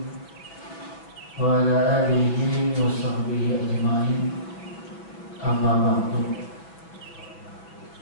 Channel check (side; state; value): right; late; 6.3 ms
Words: wa ala alihi wa sahbihi ajma'in. Amma ba'du.